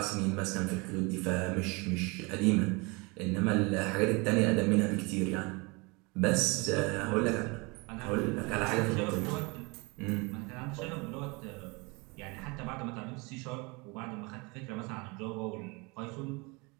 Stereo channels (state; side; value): quieter; left; 27.6 dB